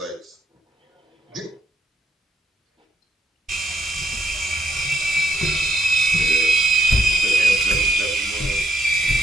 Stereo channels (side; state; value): both; normal; correlation 0.75